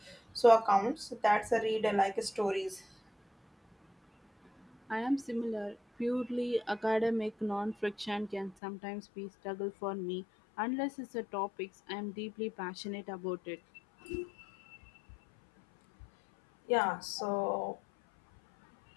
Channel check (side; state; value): right; drops out; at 8.6 s